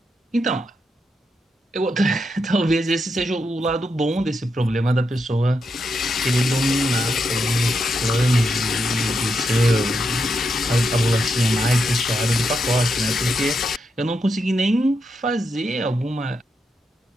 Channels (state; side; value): normal; both; correlation 0.83